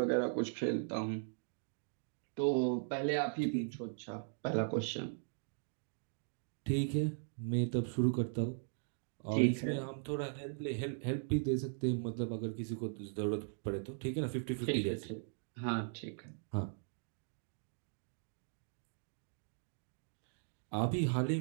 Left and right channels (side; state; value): left; silent; digital silence